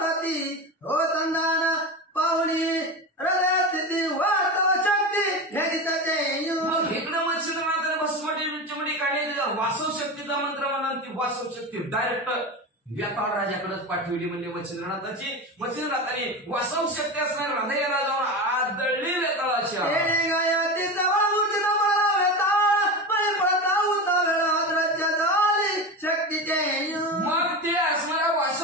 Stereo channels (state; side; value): normal; both; correlation 0.23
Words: मग इकडं मच्छिंद्रनाथाने भस्मटी काढली, वासव शक्तीचा मंत्र म्हणा, ती वासव शक्ती डायरेक्ट व्यापार राजाकडेच पाठवली. म्हणजे मच्छिंद्रनाथाने वासव शक्ती असणार हृदयाला जाऊन आदळली वेताळाच्या. मग ते असणाऱ्या